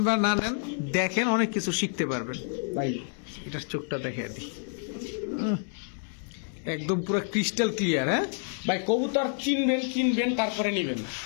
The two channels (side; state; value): right; silent; 59 dB below the other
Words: বা না নেন, দেখেন অনেক কিছু শিখতে পারবেন। ভাই এটার চোখটা দেখে দিই, একদম পুরো ক্রিস্টাল ক্লিয়ার। হ্যাঁ ভাই কবুতর চিনবেন তারপরে নিবেন।